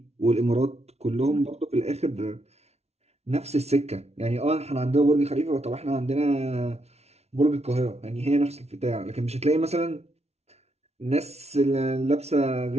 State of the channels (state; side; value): late; left; 0.31 ms